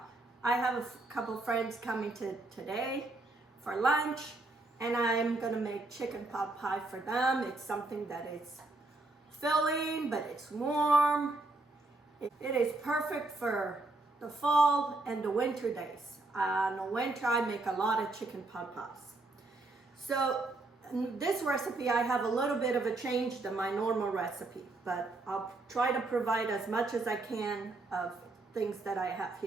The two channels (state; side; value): quieter; left; 3.1 dB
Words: I have a couple friends coming today for lunch, and I'm gonna make chicken pot pie for them. It's something that is filling, but it's warm. It is perfect for the fall and the winter days. In the winter, I make a lot of chicken pot pies. So in this recipe, I have a little bit of a change than my normal recipe, but I'll try to provide as much as I can of things that I have